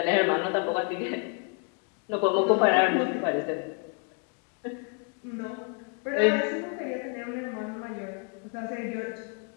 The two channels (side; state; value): right; quieter; 36.7 dB